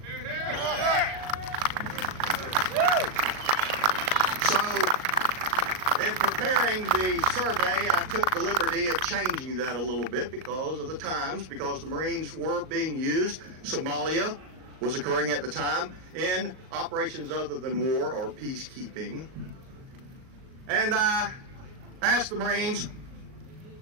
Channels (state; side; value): late; left; 38 ms